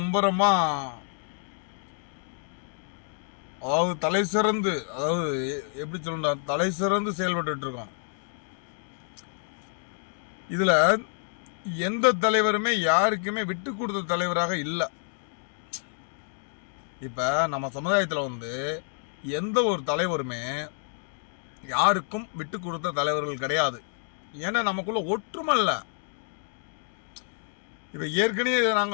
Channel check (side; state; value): right; silent; digital silence